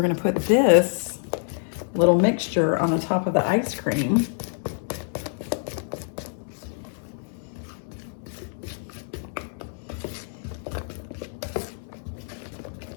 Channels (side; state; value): right; silent; 61 dB below the other